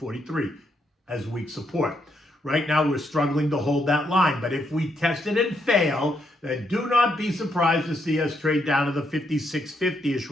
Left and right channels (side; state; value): both; normal; correlation 0.77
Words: as weak support. Right now, we're struggling to hold that line. But if we test it and fail, then do not be surprised to see us trade down to the 56.50-ish